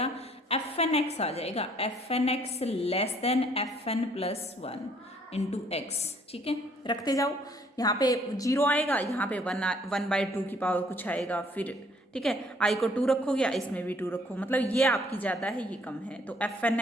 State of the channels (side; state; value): both; normal; correlation 0.62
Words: एफ एन एक्स आ जाएगा, f N x less than f N + 1 into x, ठीक है। रखते जाओ, यहाँ पे 0 आएगा, यहाँ पे 1 बाई 2 की पावर कुछ आएगा फिर, ठीक है। आई को 2 रखोगे, इसमें भी 2 रखो, मतलब ये आपकी ज़्यादा है ये कम है। तो एफ एन